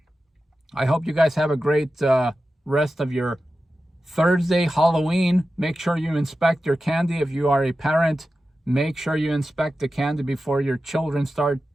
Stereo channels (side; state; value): both; normal; correlation 0.93